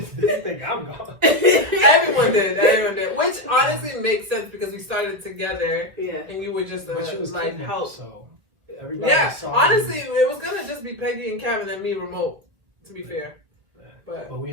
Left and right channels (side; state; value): left; late; 2.0 ms